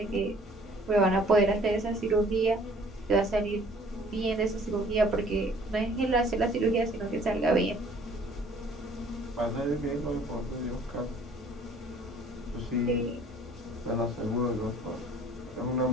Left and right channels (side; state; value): both; normal; correlation 0.55